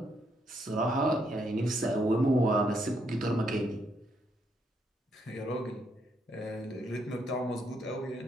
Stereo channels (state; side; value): normal; both; correlation 0.75